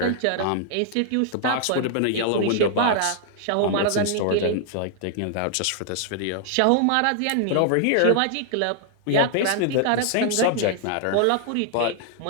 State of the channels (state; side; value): different; both; correlation 0.00